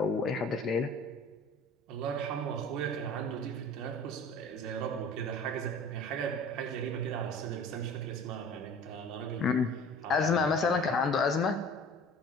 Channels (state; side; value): normal; both; correlation 0.43